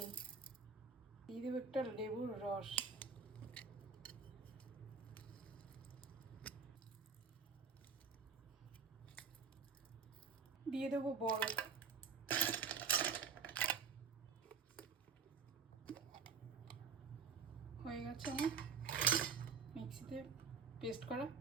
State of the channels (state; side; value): quieter; left; 5.7 dB